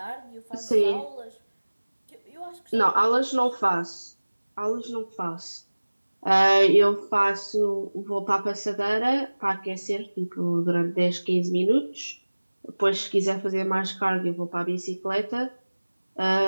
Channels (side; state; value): both; inverted; correlation -1.00